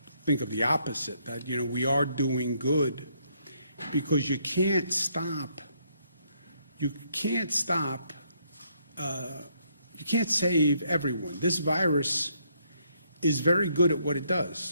think of the opposite, that, we are doing good, because you can't stop, you can't save everyone. This virus is very good at what it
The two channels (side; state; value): both; inverted; correlation -0.72